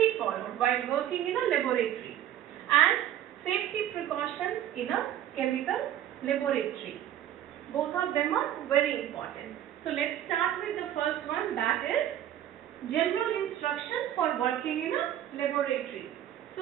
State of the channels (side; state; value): left; quieter; 11.5 dB